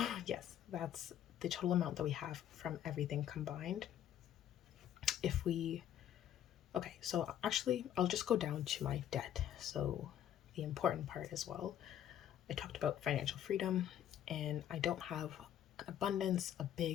yes, that's the total amount that we have from everything combined. Okay, so actually I'll just go down to my debt. So the important part as well. I talked about financial freedom, and I don't have an abundance, a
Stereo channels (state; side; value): quieter; right; 10.6 dB